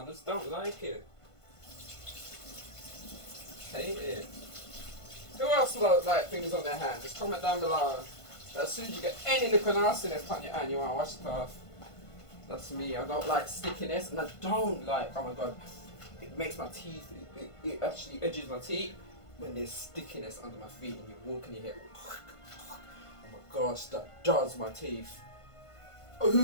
I just don't like it. Hate it. Who else like things on their hand? Just comment down below. As soon as you get any liquid nastiness on your hand, you want to wash it off. That's me. I don't like stickiness, and I don't like, oh my god, it makes my teeth, it actually edges my teeth when there's stickiness under my feet and you walk and you hear gosh, that jars my teeth.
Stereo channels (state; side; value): late; right; 1.5 ms